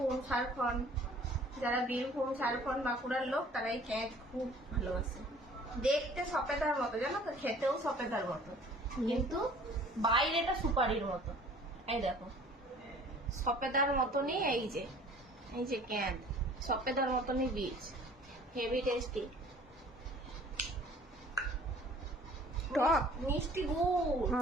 ঝাড়খণ্ড। যারা বীরভূম ঝাড়খণ্ড বাঁকুড়ার লোক তারা এই ক্যাঁত খুব ভালোবাসে। দেখতে সপেদার মতো, জানো তো, খেতেও সপেদার মতো, কিন্তু বাইরেটা সুপারির মতো। এই দেখো সপেদার মতনই, এই যে ক্যাঁত সপেদার মতনই বীজ, হেভি টেস্টি, টক মিষ্টি গুড়।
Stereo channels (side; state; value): both; normal; correlation 0.51